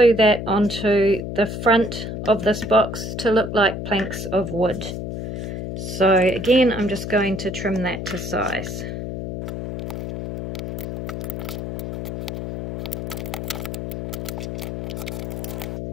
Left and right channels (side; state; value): left; noise; hum, 6 dB below the sound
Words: that onto the front of this box to look like planks of wood. So again, I'm just going to trim that to size.